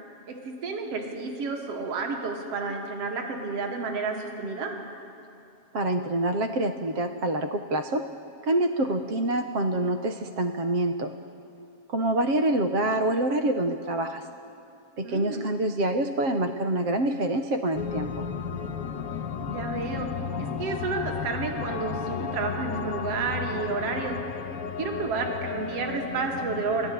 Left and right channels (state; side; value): late; left; 7.4 ms